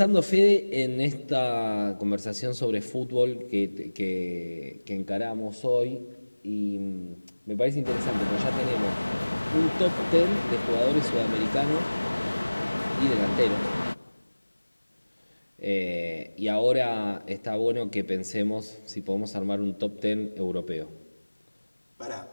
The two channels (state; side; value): inverted; both; correlation -1.00